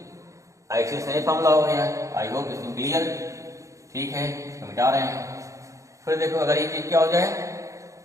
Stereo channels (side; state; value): left; late; 0.15 ms